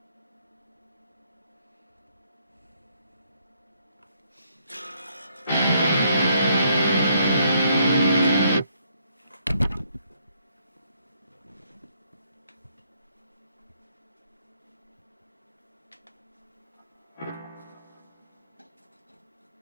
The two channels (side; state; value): both; inverted; correlation -0.70